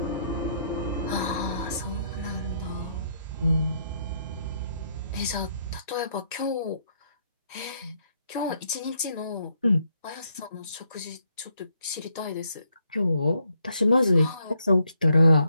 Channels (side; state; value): both; inverted; correlation -0.74